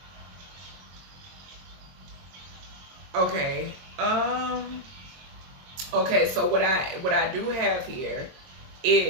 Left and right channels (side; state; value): left; late; 22 ms